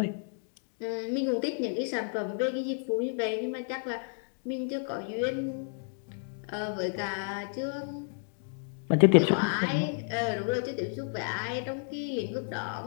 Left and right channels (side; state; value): right; silent; 57 dB below the other